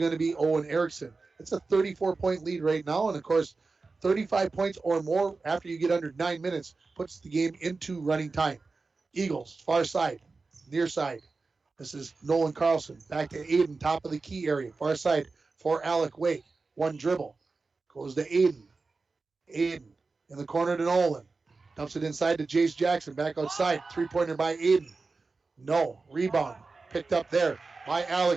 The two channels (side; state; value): left; quieter; 4.0 dB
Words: to be Owen Erickson. It's a 34-point lead right now, and of course, 35 points or more after you get under 9 minutes puts the game into running time. Eagles, far side, near side. This is Nolan Carlson. Back to Aiden, top of the key area. Far side for Alec Wake. One dribble. Goes to Aiden. Aiden in the corner to Nolan. Dumps it inside to Jace Jackson. Back outside. Three-pointer by Aiden. No. Rebound. Picked up there by